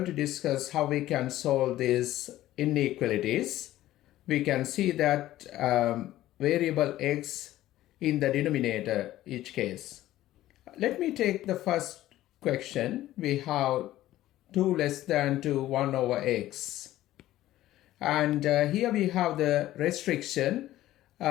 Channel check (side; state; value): right; quieter; 14.6 dB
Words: to discuss how we can solve these inequalities. We can see that variable x in the denominator each case. Let me take the first question. We have 2 less than 2 1 over x, and here we have the restriction.